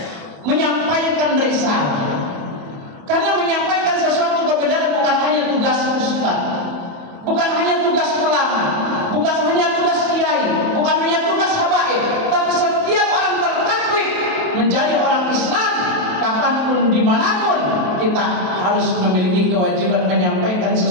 Menyampaikan risalah. Karena menyampaikan sesuatu kebenaran bukan hanya tugas ustaz, bukan hanya tugas ulama, bukan hanya tugas kiai, bukan hanya tugas habaib, tapi setiap orang tertaklif menjadi orang Islam. Kapanpun, dimanapun, kita harus memiliki kewajiban menyampaikan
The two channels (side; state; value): left; late; 27 ms